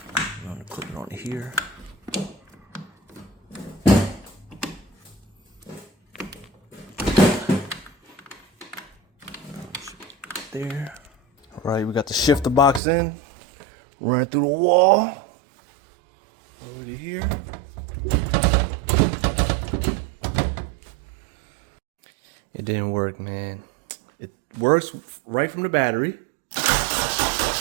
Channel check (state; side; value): drops out; left; at 12.8 s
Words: gonna clip it onto here. There. Alright, we got the shifter box in. Running through the wall. Over to here. It didn't work, man. It works right from the battery.